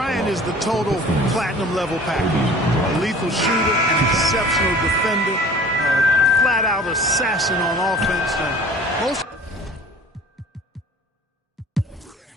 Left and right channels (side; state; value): both; normal; correlation 0.46